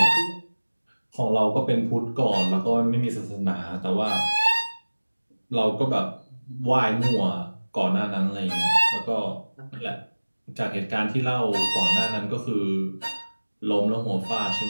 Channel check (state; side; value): inverted; both; correlation -1.00